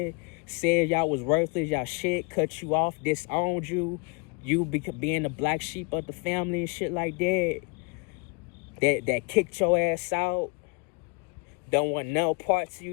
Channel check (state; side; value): quieter; right; 31.5 dB